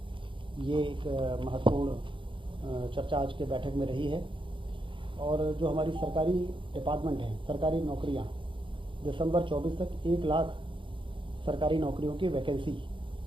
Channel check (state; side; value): late; left; 0.24 ms